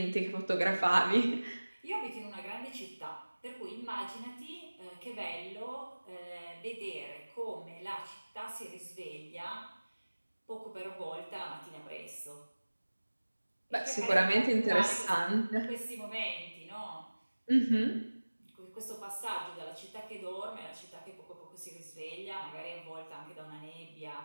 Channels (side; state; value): both; inverted; correlation -1.00